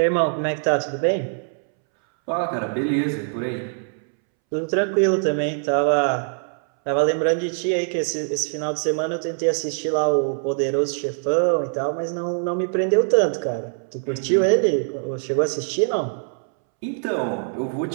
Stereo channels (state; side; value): silent; left; 64 dB below the other